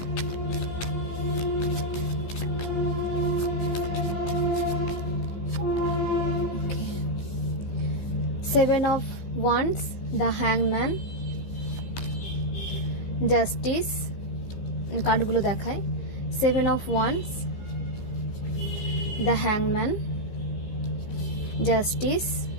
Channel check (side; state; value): right; late; 15 ms